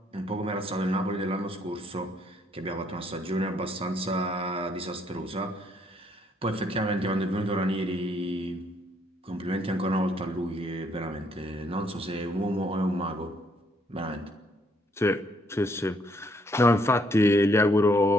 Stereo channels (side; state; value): both; normal; correlation 0.68